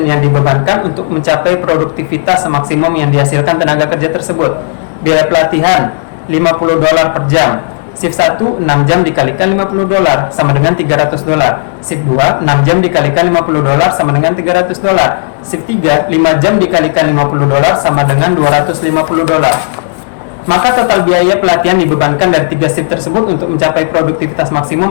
yang dibebankan untuk mencapai produktivitas maksimum yang dihasilkan tenaga kerja tersebut? Biaya pelatihan $50 per jam. Shift 1 6 jam dikalikan $50 sama dengan $300. Shift 2 6 jam dikalikan $50 sama dengan $300. Shift 3 5 jam dikalikan $50 sama dengan $250. Maka total biaya pelatihan dibebankan dari 3 shift tersebut untuk mencapai produktivitas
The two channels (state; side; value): silent; right; digital silence